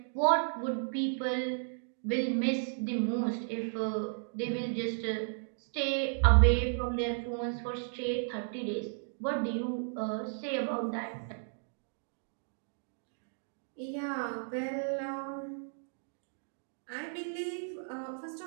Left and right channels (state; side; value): silent; left; digital silence